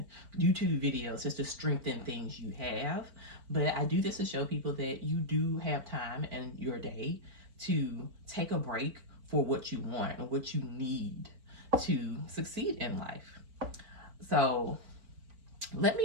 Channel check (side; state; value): left; late; 4.4 ms